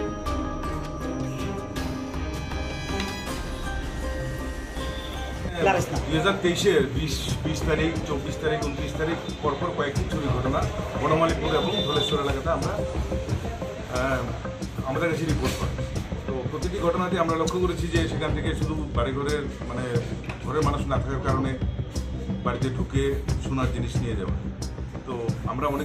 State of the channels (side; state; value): both; identical; correlation 1.00